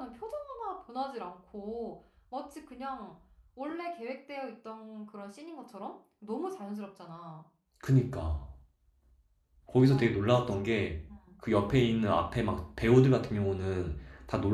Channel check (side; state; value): both; identical; correlation 1.00